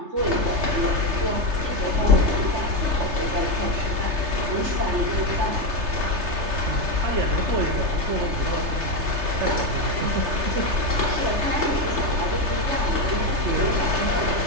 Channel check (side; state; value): left; late; 3.3 ms